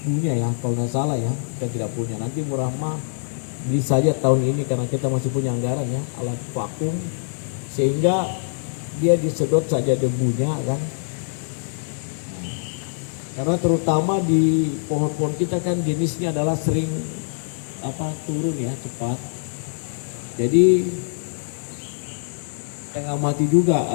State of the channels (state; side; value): silent; right; 63 dB below the other